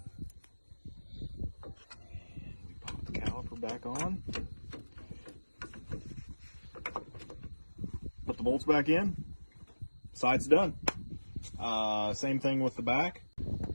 we pop the caliper back on, put the bolts back in, side's done. Same thing with the back.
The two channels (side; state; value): both; inverted; correlation -1.00